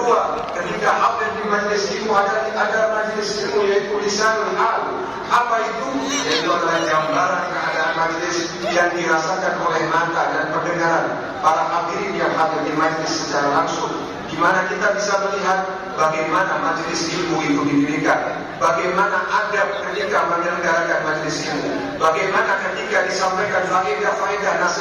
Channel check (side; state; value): both; identical; correlation 1.00